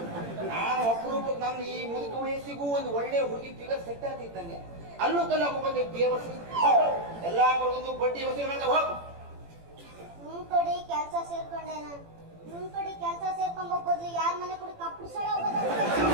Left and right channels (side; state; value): left; late; 18 ms